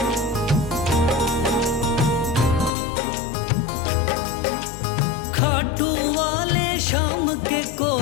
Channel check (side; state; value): right; drops out; at 2.7 s